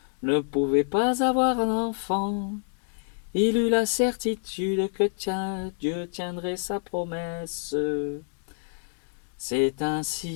ne pouvait pas avoir un enfant. Il eut la certitude que Dieu tiendrait sa promesse. C'est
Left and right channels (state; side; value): silent; right; digital silence